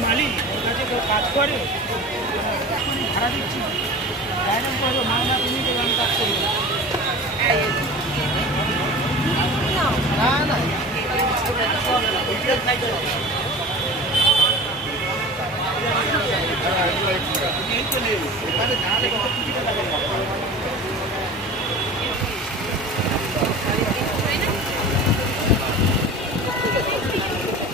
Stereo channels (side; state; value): both; normal; correlation 0.36